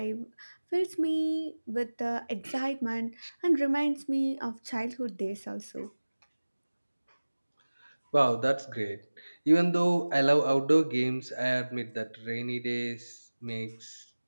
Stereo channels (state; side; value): inverted; both; correlation -1.00